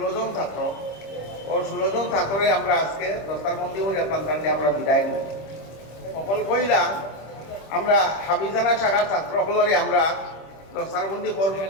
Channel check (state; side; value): late; right; 26 ms